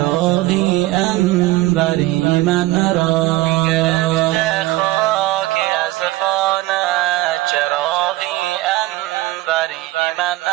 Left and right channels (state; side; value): quieter; left; 18.0 dB